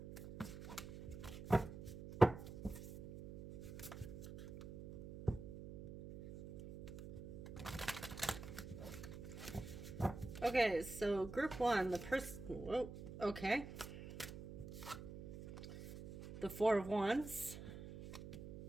Okay, so group one, the person, whoa, okay. The Four of Wands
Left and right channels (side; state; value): right; noise; hum, 10 dB below the sound